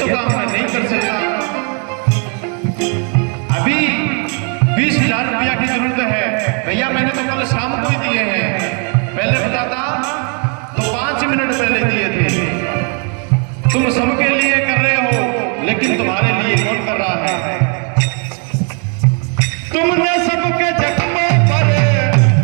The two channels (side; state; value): left; quieter; 38.8 dB